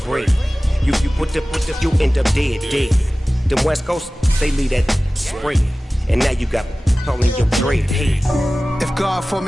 You put the you end up dead. The West Coast, they leave that spread. And now you got calling your dread head. If God for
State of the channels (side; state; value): both; normal; correlation 0.97